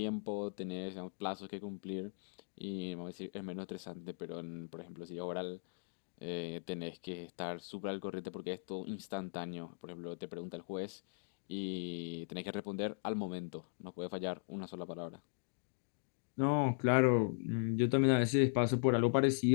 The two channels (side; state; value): right; silent; digital silence